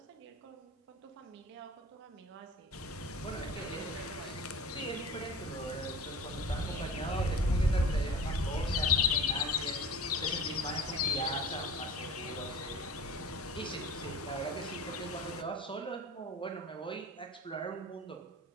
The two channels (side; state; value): both; normal; correlation 0.38